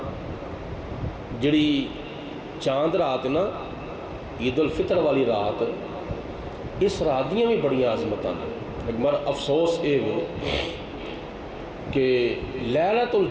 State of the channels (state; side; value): identical; both; correlation 1.00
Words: جڑی چاند رات نا عید الفطر والی رات، اس رات دیاں بھی بڑی عظمتاں نے۔ ایک بار افسوس اے وے کہ لیلۃ